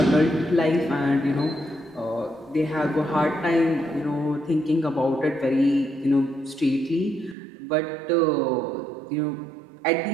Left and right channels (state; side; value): drops out; left; at 7.4 s